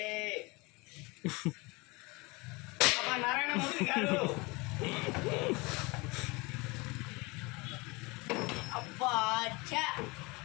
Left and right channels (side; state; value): right; quieter; 25.6 dB